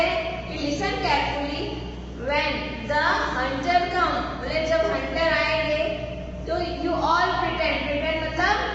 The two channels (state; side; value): identical; both; correlation 1.00